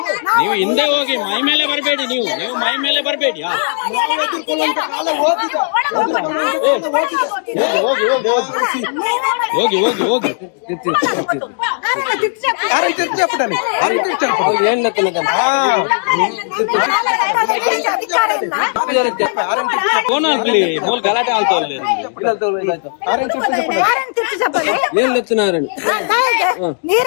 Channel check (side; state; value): right; silent; 57 dB below the other